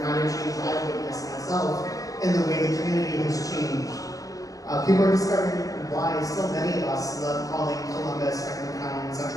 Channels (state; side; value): late; right; 0.17 ms